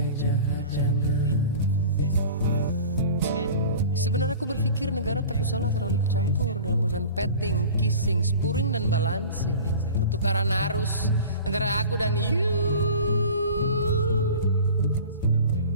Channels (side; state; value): both; inverted; correlation -0.39